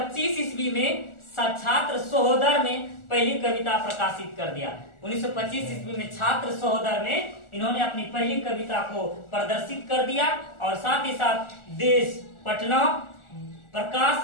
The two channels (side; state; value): right; late; 1.4 ms